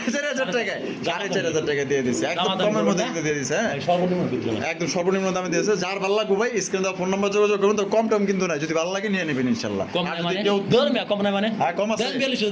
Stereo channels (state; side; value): identical; both; correlation 1.00